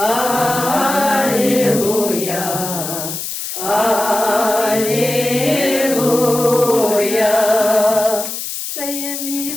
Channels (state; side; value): noise; left; hiss, 6 dB below the sound